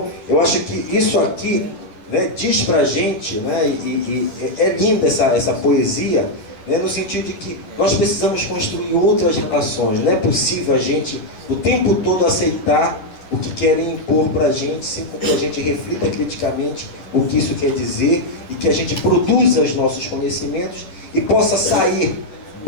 eu acho que isso aqui, né, diz pra gente, né, e é linda essa poesia, né, no sentido de que nós precisamos construir outras relações. Não é possível a gente o tempo todo aceitar o que querem impor para a gente, sem que a gente reflita criticamente o que isso quer dizer e que a gente produza os nossos conhecimentos e possa sair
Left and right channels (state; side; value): late; right; 11 ms